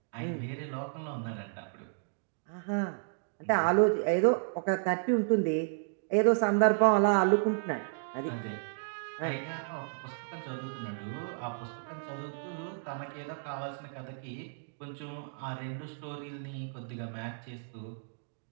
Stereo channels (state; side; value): silent; left; digital silence